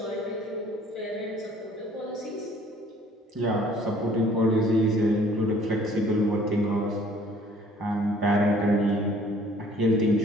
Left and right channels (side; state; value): both; normal; correlation 0.56